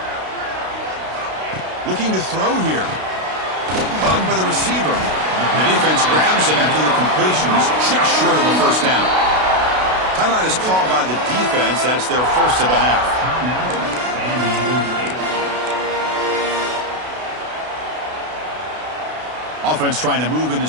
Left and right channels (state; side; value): late; left; 32 ms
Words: Looking to throw here. Caught by the receiver. The defense grabs him after the completion. He's just short of a first down. Timeout is called by the defense. That's their first of the half. Offense trying to move into